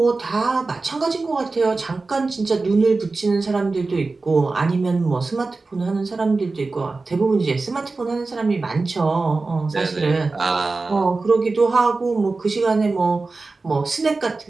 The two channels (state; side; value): quieter; left; 3.7 dB